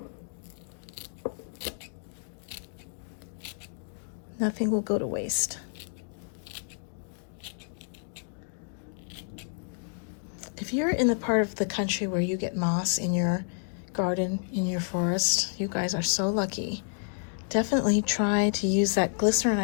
Nothing will go to waste. If you're in the part of the country where you get moss in your garden, in your forest, you guys are so lucky. Definitely try to use that glycerin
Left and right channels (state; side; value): silent; right; digital silence